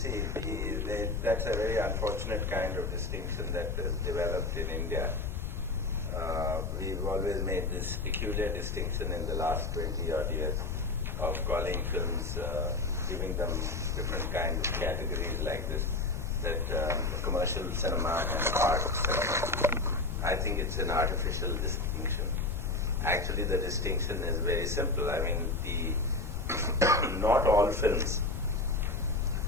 that's a very unfortunate kind of distinction that has developed in India. We've always made this peculiar distinction in the last 20 odd years of calling films, giving them different kinds of categories like this, that commercial cinema and art cinema. I think it's an artificial distinction. Actually, the distinction is very simple. I mean, not all films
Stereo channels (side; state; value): left; noise; rumble, 3 dB below the sound